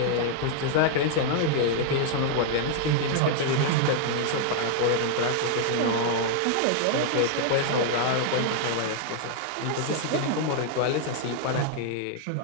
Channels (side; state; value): both; different; correlation 0.00